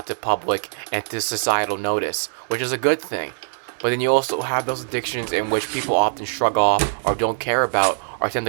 to public and to societal notice, which is a good thing. But then you also have those addictions in which people often shrug off or don't care about or tend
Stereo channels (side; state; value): left; silent; 64 dB below the other